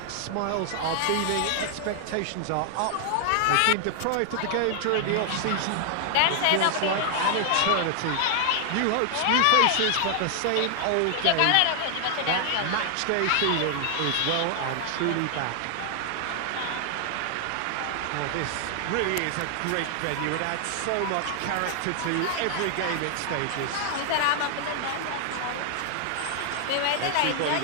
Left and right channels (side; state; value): both; different; correlation 0.00